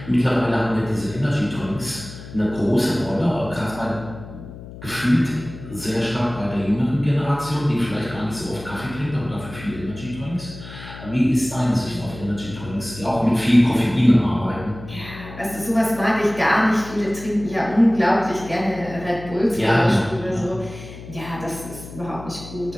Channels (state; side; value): noise; left; hum, 14 dB below the sound